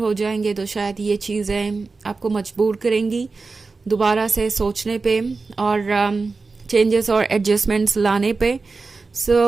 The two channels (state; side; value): quieter; left; 4.1 dB